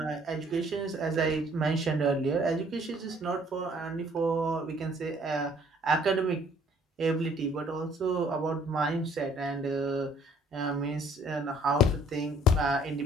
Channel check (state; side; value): normal; both; correlation 0.60